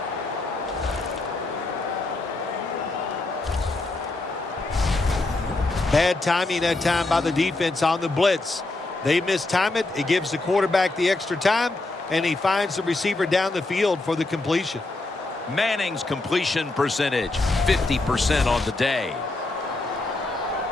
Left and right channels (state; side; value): quieter; right; 3.1 dB